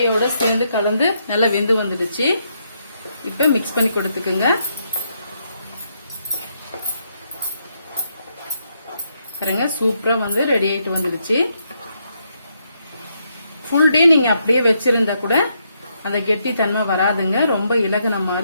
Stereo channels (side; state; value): both; inverted; correlation -0.77